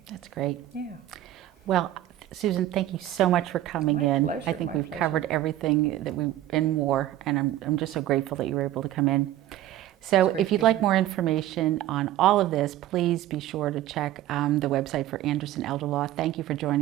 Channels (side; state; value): left; quieter; 13.6 dB